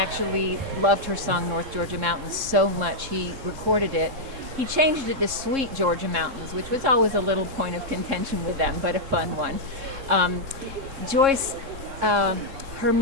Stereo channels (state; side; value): late; left; 3.8 ms